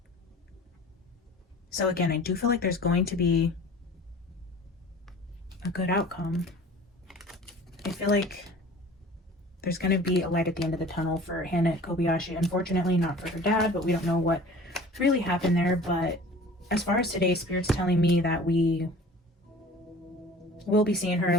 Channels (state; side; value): normal; both; correlation 0.44